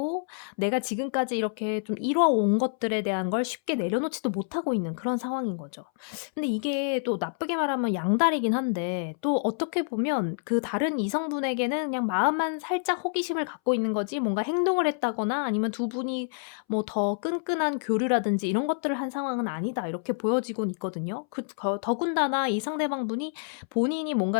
내가 지금까지 이렇게 좀 이뤄온 것들에 대한 걸 쉽게 내려놓지도 못하고 있는 그런 상황인 거죠. 근데 이게 또 나쁘게 말하면 양다리긴 한데, 또 어떻게 보면 그 다른 이성분에게는 그냥 마음만 살짝 호기심을 갖고 있는 거지 뭔가 행동을 했다거나 아니면 두 분이 뭐 더 끈끈한 교류라든지 이런 것들을 한 상황은 아니다, 이렇게 보여지곤 있거든요. 더군다나 이 상대방분이 본인이 뭔가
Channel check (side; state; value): right; silent; 60 dB below the other